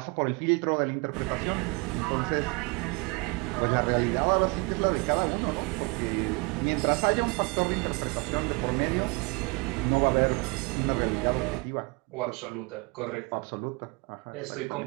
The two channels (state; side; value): quieter; left; 28.7 dB